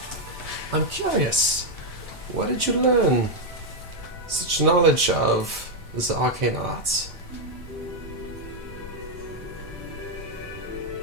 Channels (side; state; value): both; normal; correlation 0.01